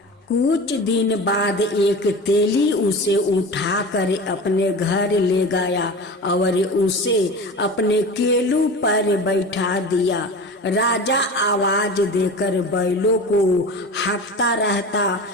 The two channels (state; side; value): normal; both; correlation 0.32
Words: कुछ दिन बाद एक तेली उसे उठाकर अपने घर ले गया और उसे अपने केलू पर बैठा दिया। राजा आवाज देकर बैलों को हाँकता रहता।